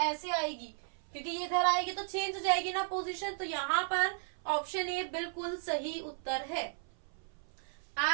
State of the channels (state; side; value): silent; left; 54 dB below the other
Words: आएगी, क्योंकि ये इधर आएगी तो चेंज हो जाएगी ना पोजीशन। तो यहाँ पर ऑप्शन ए बिल्कुल सही उत्तर है।